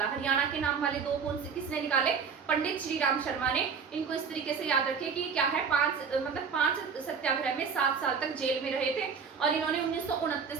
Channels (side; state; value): left; quieter; 6.0 dB